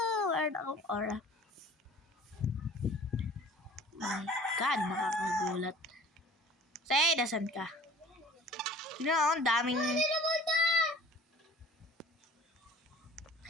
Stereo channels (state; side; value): normal; both; correlation 0.47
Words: Where na akong aura? My God, nakakagulat. Say, nasan ka? Tignan mo, ang daming...